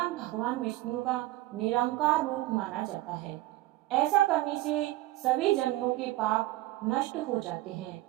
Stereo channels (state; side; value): quieter; left; 17.1 dB